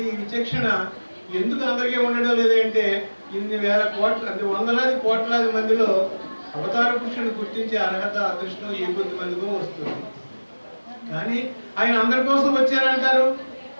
విచక్షణ ఎందుకు అందరికీ ఉండడం లేదంటే ఇన్ని వేల కోట్ల అంటే వందలాది కోట్లాది మందిలో అవతార పురుషుని గుర్తించే అర్హత అదృష్టం ఏ కొద్ది మందికో వస్తుంది. కానీ ఆయన అందరి కోసం వచ్చారంటారు,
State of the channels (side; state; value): both; inverted; correlation -1.00